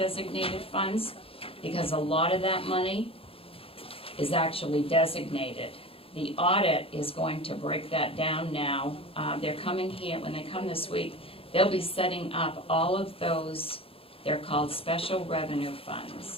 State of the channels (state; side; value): late; right; 0.27 ms